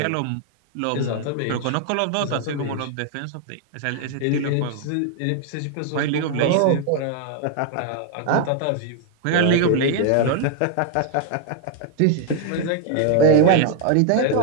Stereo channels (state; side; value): different; both; correlation 0.00